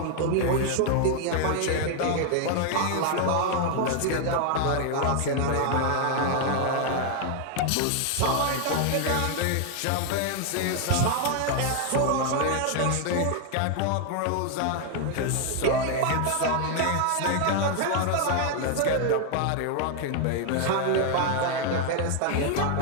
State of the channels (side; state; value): both; different; correlation 0.00